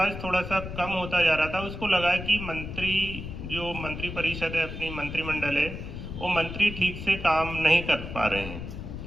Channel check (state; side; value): noise; left; rumble, 8 dB below the sound